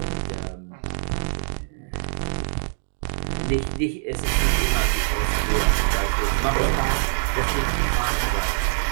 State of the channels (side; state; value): left; silent; digital silence